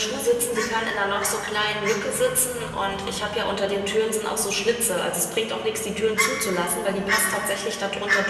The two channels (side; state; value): both; identical; correlation 1.00